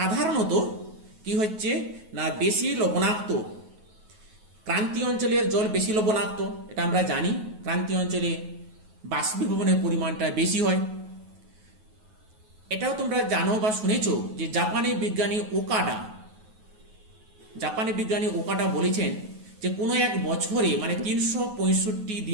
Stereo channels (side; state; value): left; late; 9.3 ms